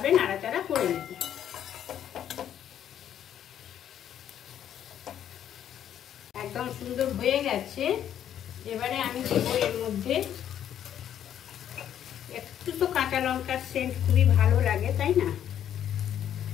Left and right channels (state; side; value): quieter; right; 10.1 dB